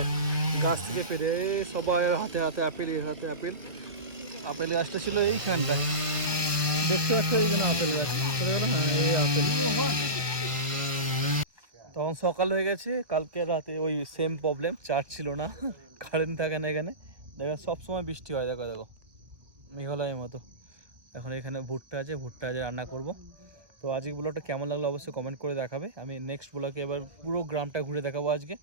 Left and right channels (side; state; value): left; late; 1.2 ms